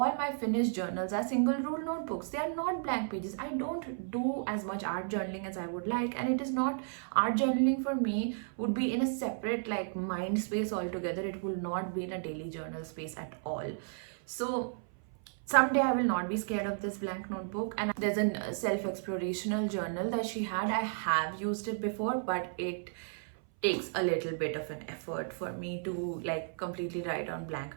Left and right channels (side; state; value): left; silent; 55 dB below the other